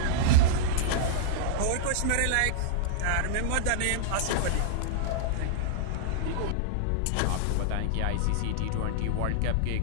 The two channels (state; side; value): different; both; correlation -0.01